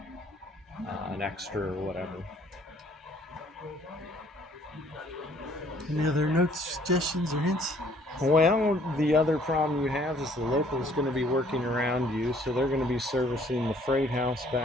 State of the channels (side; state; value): both; normal; correlation 0.60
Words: an extra or whatever. Any other notes, suggestions, or hints? Well, the other problem you have is the local's going to be working around you, so they're going to be servicing the freight house